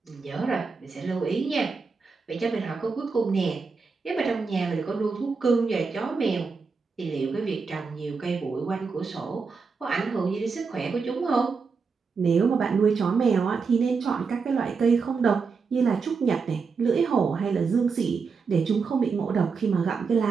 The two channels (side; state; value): left; quieter; 5.0 dB